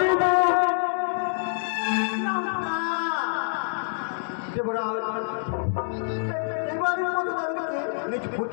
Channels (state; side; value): silent; right; 56 dB below the other